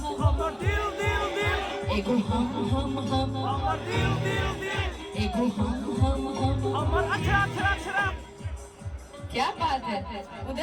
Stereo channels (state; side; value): identical; both; correlation 1.00